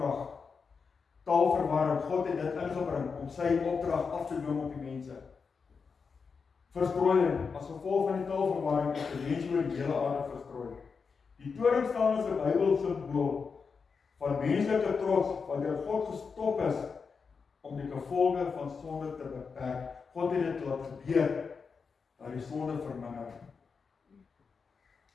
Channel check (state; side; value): quieter; right; 5.3 dB